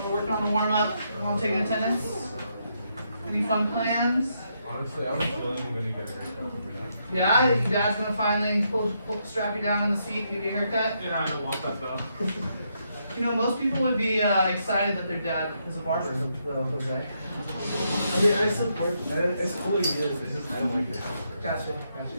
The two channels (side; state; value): both; inverted; correlation -0.78